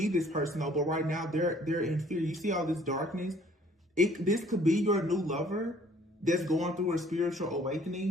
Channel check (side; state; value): both; normal; correlation 0.57